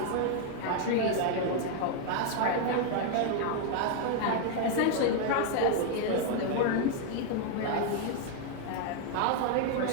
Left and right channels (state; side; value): different; both; correlation 0.01